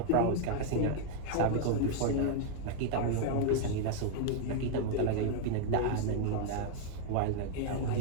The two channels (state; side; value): different; both; correlation 0.00